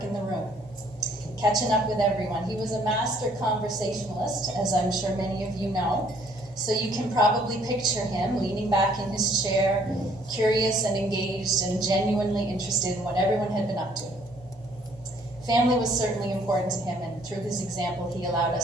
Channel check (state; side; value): normal; both; correlation 0.62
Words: in the room, catching up with everyone. He was a master conversationalist, as I'm sure many of you know, so you can probably picture him leaning back in his chair, curious and engaged and genuinely interested in what everyone had been up to. Family was certainly important to him, and through his example, he allowed